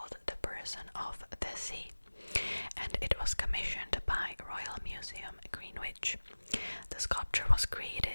The Person of the Sea, and it was commissioned by Royal Museum Greenwich. The sculpture was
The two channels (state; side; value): inverted; both; correlation -1.00